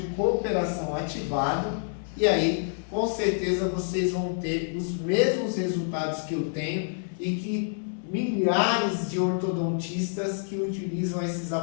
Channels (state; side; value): silent; right; 60 dB below the other